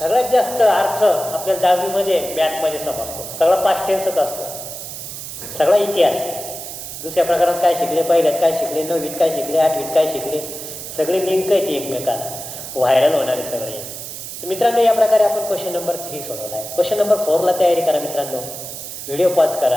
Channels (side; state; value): right; noise; hiss, 9 dB below the sound